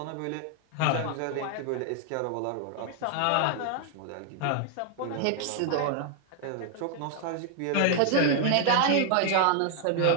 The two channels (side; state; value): both; different; correlation 0.00